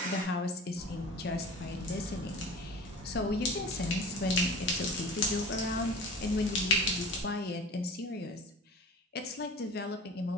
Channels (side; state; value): both; normal; correlation 0.38